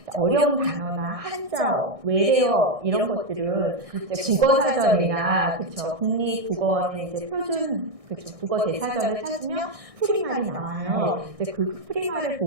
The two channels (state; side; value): late; left; 1.6 ms